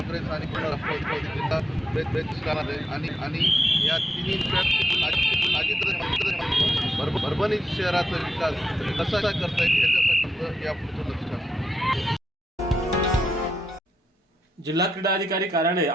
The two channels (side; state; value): both; normal; correlation 0.85